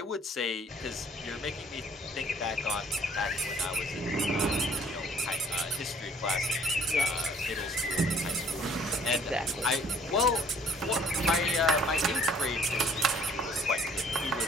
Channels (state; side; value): normal; both; correlation 0.57